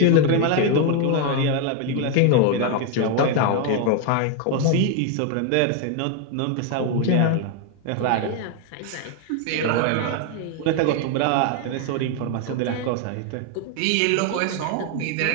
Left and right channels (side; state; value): both; different; correlation 0.01